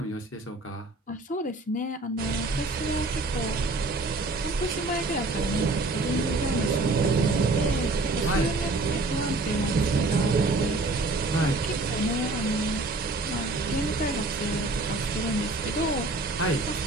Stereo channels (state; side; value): quieter; left; 3.1 dB